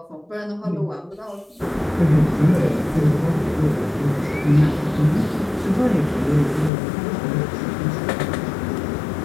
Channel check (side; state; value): right; drops out; at 6.7 s